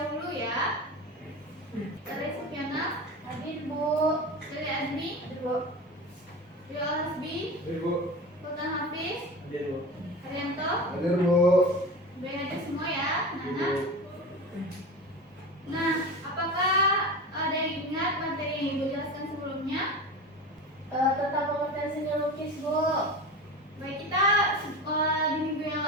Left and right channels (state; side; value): normal; both; correlation 0.29